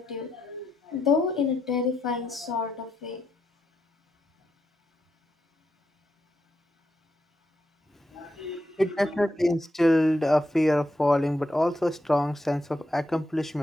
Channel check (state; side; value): normal; both; correlation 0.83